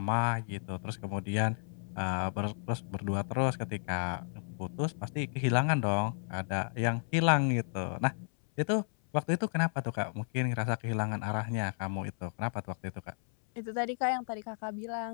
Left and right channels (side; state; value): right; silent; 56 dB below the other